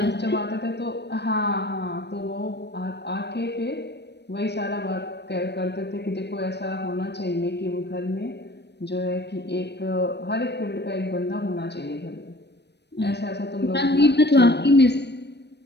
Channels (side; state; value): right; late; 0.50 ms